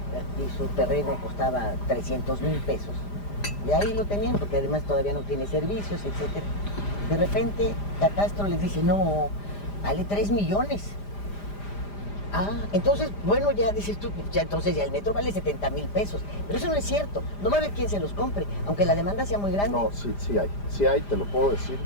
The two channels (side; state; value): right; late; 5.0 ms